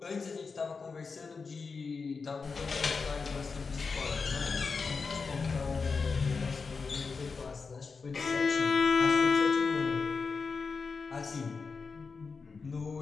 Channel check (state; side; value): quieter; right; 4.8 dB